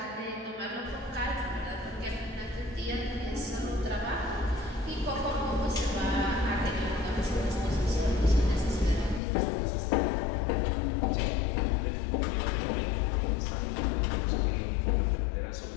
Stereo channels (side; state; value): right; drops out; at 9.2 s